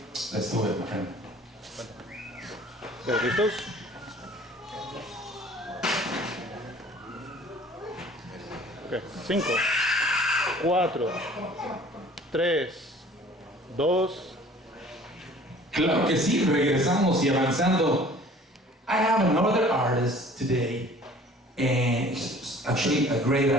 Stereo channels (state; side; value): normal; both; correlation 0.49